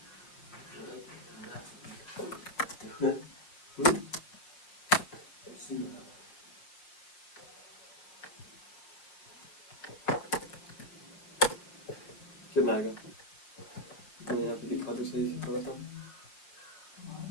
कितना आएगा, मैं यहाँ पे दिखा दो सही से, थोड़ा सा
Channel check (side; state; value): right; late; 5.8 ms